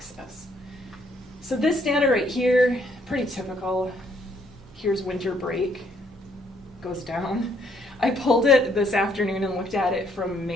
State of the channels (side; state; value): both; normal; correlation 0.68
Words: So this data right here, pretty typical. Here's winter break, goes down. I pulled it this afternoon and looked at it from